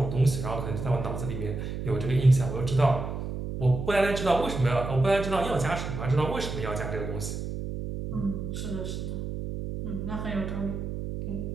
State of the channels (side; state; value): right; noise; hum, 5 dB below the sound